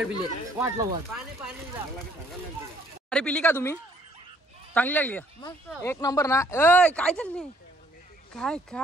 पिले. वाटला वाट अरे पिली का तुम्ही. चांगली लागली का. एक नंबर ना. ए काय चालली. काय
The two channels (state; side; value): normal; both; correlation 0.63